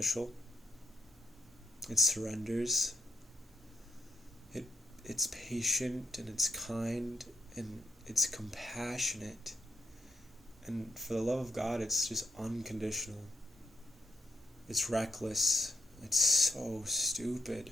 It surrenders. It's patient and it's kind and it's compassionate. And for the love of God, it's just unconditional. It's reckless. It's so stupid.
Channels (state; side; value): normal; both; correlation 0.77